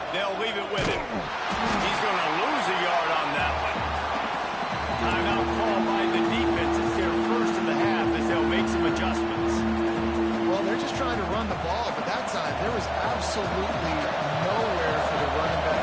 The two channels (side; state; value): both; identical; correlation 1.00